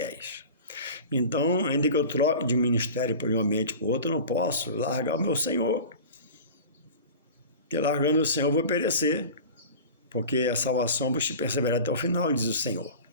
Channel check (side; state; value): both; inverted; correlation -0.36